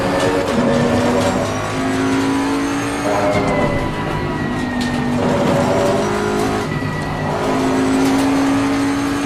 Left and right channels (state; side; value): identical; both; correlation 1.00